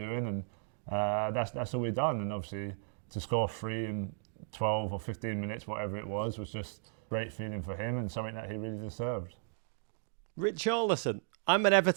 and that's all we've done. And obviously to score 3 in 12 or 15 minutes, whatever it was just a great feeling for him and something that he really deserved. Richarlison, I'm an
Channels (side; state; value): left; silent; digital silence